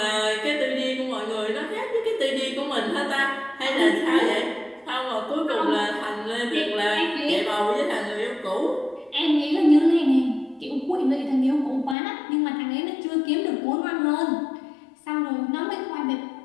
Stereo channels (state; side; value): drops out; right; at 12.0 s